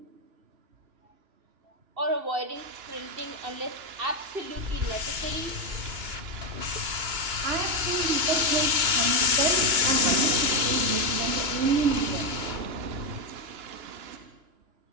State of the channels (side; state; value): left; late; 2.9 ms